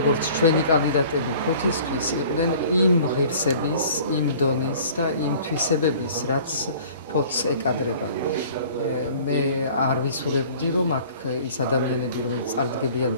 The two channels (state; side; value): inverted; both; correlation -0.49